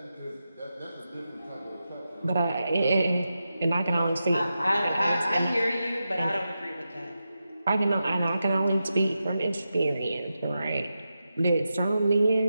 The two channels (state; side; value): inverted; both; correlation -0.90